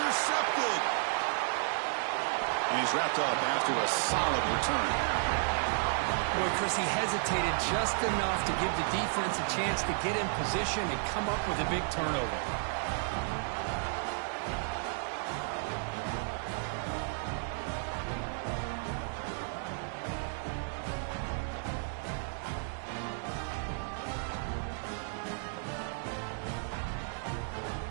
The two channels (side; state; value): left; silent; 56 dB below the other